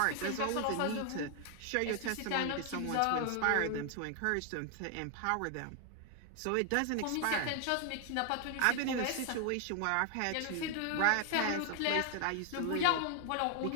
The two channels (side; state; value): both; different; correlation 0.00